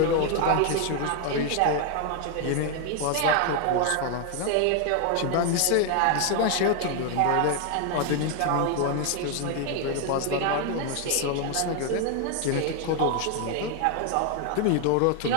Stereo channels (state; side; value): different; both; correlation 0.00